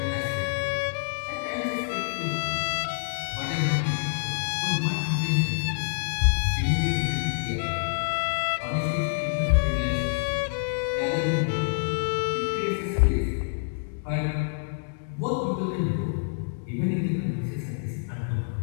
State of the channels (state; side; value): silent; right; digital silence